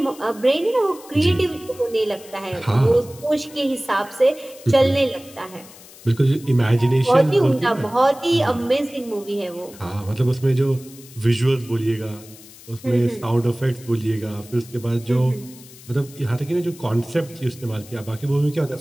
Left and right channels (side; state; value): left; noise; hiss, 20 dB below the sound